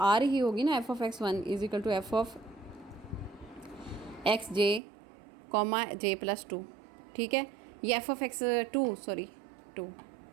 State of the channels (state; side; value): drops out; left; at 4.8 s